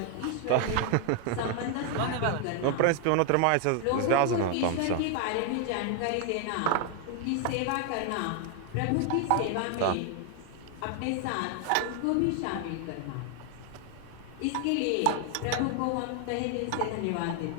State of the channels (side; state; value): both; different; correlation 0.00